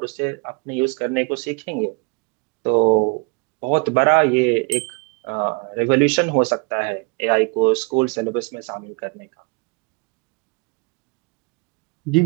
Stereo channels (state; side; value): quieter; left; 30.7 dB